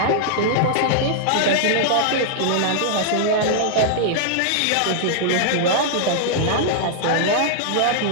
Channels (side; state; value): both; different; correlation -0.01